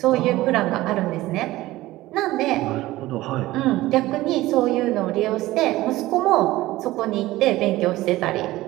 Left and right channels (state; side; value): quieter; left; 17.4 dB